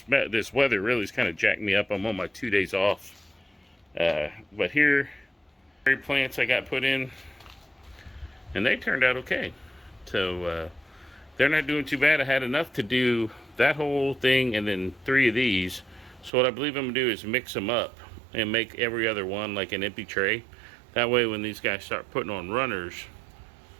weather really is kind of jacked me up. I'm on my 2 days off. But here, plants I got put in, and they turned out okay. So they're not doing too bad. I had enough to do that whole thing and then 3 of these. So what I believe I'm gonna do is mix them up and make every other one like an empty tray. That way when these guys start putting on runners,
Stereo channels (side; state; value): left; drops out; at 16.3 s